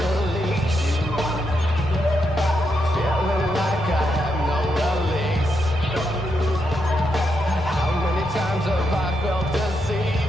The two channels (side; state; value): both; normal; correlation 0.82